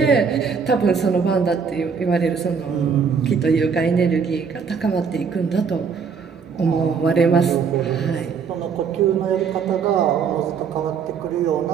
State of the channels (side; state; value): left; quieter; 6.1 dB